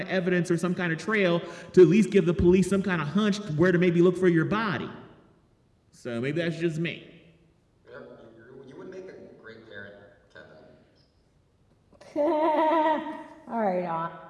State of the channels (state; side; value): identical; both; correlation 1.00